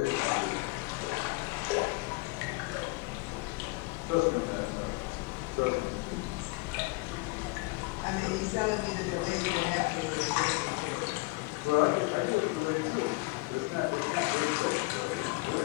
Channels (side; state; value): right; quieter; 24.9 dB